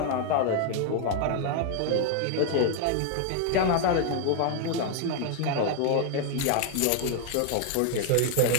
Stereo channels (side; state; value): both; different; correlation 0.00